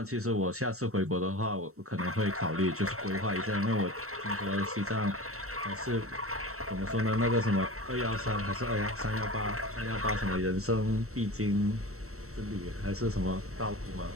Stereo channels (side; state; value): left; late; 0.63 ms